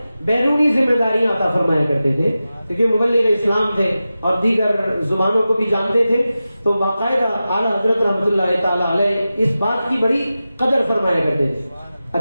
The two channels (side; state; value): both; inverted; correlation -0.94